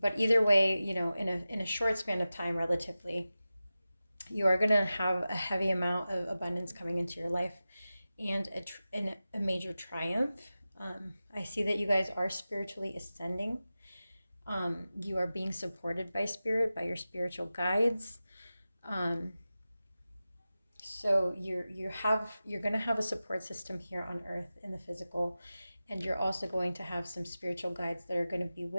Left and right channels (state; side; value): inverted; both; correlation -0.94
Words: either way, in a short span of time, relatively, you are going to have a heavy amount of abundance coming into your life and a major triumph. I see that you guys are spiritually ascending. You are being supported by spirit, by your spiritual guides. So you're going to have a support system here on earth in the physical, and you're also going to have some spiritual guides that are going to be